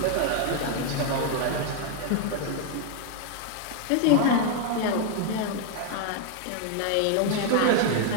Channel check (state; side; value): different; both; correlation 0.01